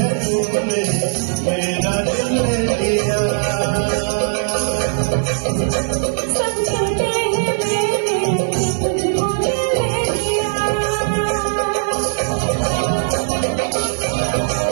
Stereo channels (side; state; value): left; silent; digital silence